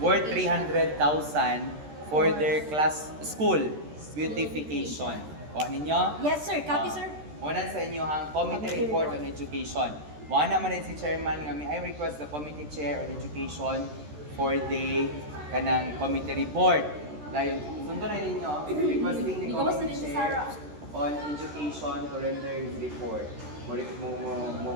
300,000 for their school beautification. Kuha ninyo? Yes, sir. Copy, sir. Muna sa inyo ang Committee Report on Education. Wala naman din si Chairman nga I request the Committee Chair on Education for the kanang Committee Report. Dahil sundo na ninyo, requesting the Committee Chair on Education to render his report.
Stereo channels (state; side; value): late; left; 13 ms